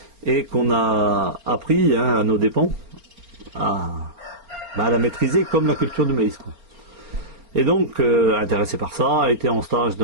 et qu'on a appris à nos dépens à la maîtriser comme la culture du maïs. Quoi. Et donc, intéressé par ça, été en stage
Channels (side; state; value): left; late; 4.3 ms